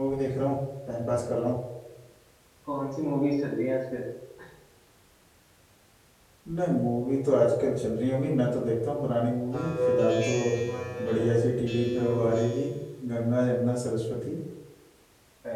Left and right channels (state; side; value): identical; both; correlation 1.00